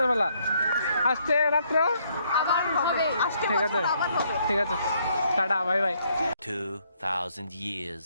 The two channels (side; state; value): both; inverted; correlation -0.70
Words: আসছে রাত্র আবার হবে আজকে ঠিক আছে আবার হবে ঠিক আছে tata bye bye 2,000 years